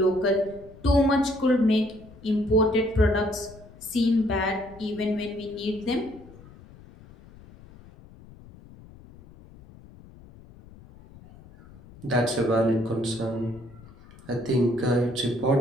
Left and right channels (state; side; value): noise; left; rumble, 21 dB below the sound